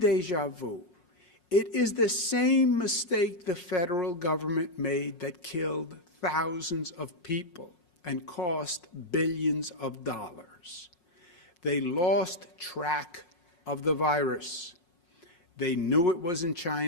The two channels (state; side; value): late; right; 5.5 ms